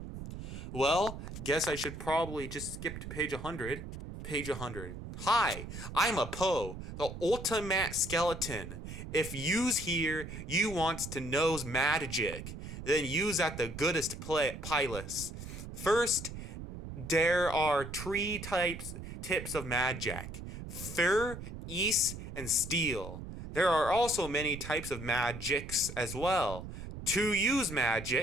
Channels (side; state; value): right; noise; rumble, 9 dB below the sound